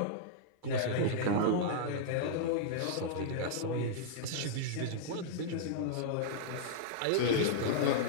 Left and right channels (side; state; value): both; different; correlation -0.01